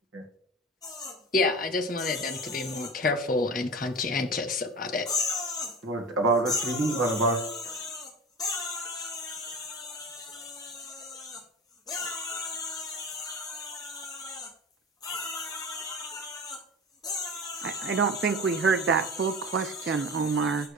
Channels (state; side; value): normal; both; correlation 0.32